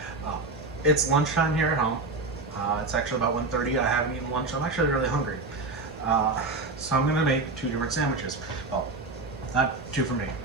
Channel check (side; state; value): left; quieter; 3.4 dB